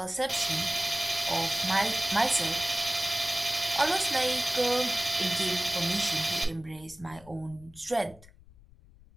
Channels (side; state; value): left; noise; rumble, 24 dB below the sound